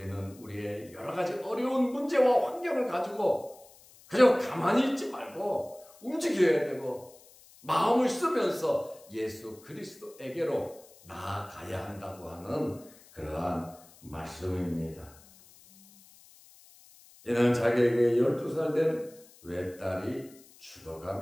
우리의 여러 가지 어려운 문제와 환경을 가지고 그저 가만히 있지 말고 움직여야 되고 마음을 쓰면서 예수 그리스도에게로 나아가야 한다고 하는 그러한 말씀입니다. 이는 자기에게 12살 된 외딸이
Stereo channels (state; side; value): noise; left; hiss, 24 dB below the sound